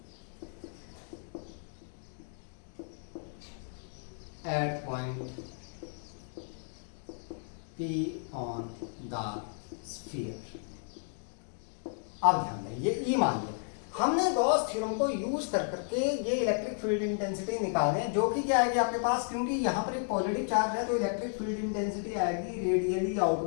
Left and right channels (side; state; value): right; silent; 56 dB below the other